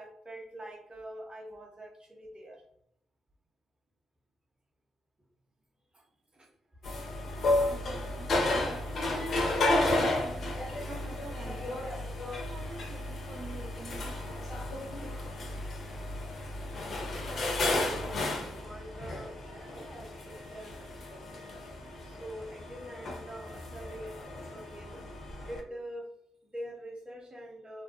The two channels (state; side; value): normal; both; correlation 0.78